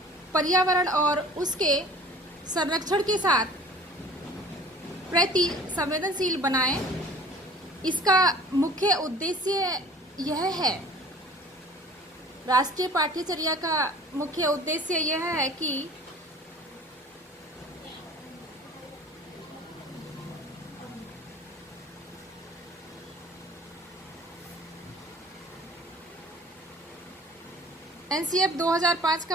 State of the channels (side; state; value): both; normal; correlation 0.46